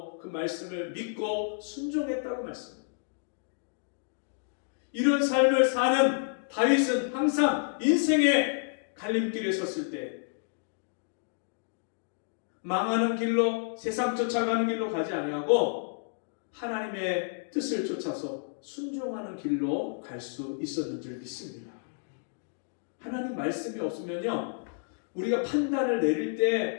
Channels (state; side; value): silent; right; digital silence